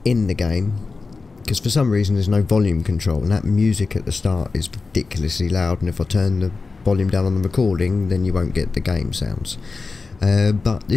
in the game because for some reason there's no volume control, and that music at the start is ridiculously loud, and if I turn the volume down on the recording then you won't get the game sounds. But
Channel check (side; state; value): right; quieter; 4.1 dB